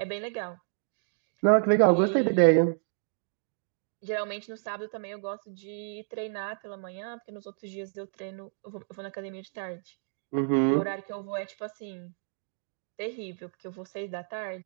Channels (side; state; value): left; silent; digital silence